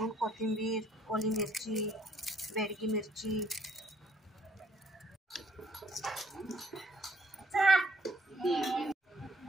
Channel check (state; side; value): normal; both; correlation 0.64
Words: कोथिंबीर, ओली मिरची, बेडगी मिरची।